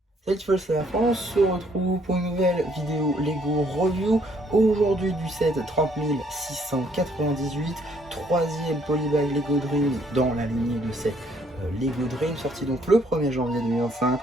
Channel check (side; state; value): both; normal; correlation 0.66